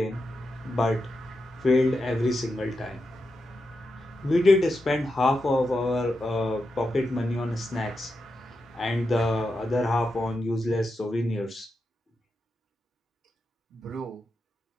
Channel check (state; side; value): normal; both; correlation 0.88